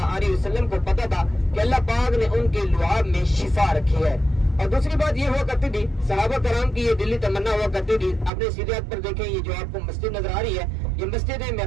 علیہ وسلم کو پتا تھا کہ اللہ پاک نے ان کے لعاب میں شفا رکھی ہے. اور دوسری بات یہ ہوا کرتی تھی, صحابہ کرام کی یہ دلی تمنا ہوا کرتی تھی. اپنے سیدھے ہاتھ پر دیکھیں, یہ جو آپ کو مسجد نظر آ رہی ہے یہ مسجد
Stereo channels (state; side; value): drops out; left; at 8.3 s